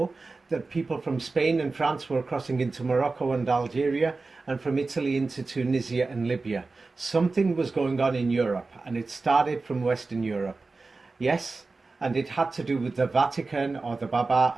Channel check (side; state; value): left; quieter; 3.8 dB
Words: that people from Spain and France were crossing into Morocco and Algeria, and from Italy into Tunisia and Libya. Something was going on in Europe, and it started from Western Europe. Yes, and it had to do with the Vatican, or the Baba,